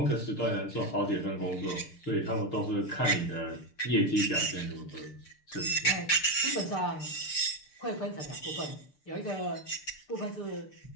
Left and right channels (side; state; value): right; late; 6.7 ms